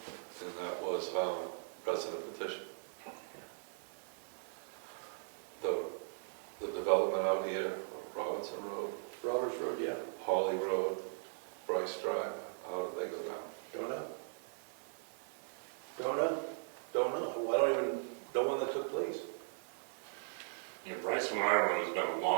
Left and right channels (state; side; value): silent; left; 52 dB below the other